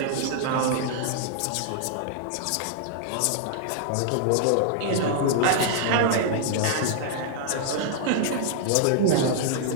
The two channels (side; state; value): both; different; correlation -0.01